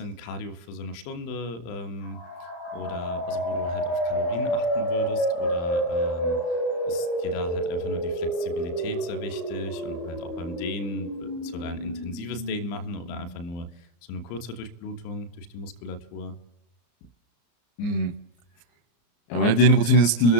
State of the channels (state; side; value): late; right; 34 ms